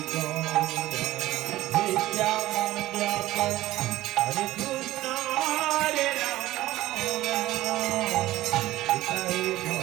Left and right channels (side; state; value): left; quieter; 15.9 dB